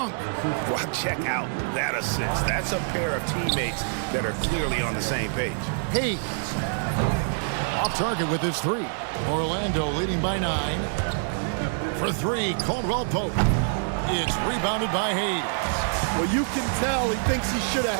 Well, check out that assist. That's a pair of teammates that are clearly on the same page. Hayes. Off target with his 3. Orlando leading by 9. For 3, Caldwell Pope. It's rebounded by Hayes. Well, you can tell he thinks he should have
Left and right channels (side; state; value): left; silent; digital silence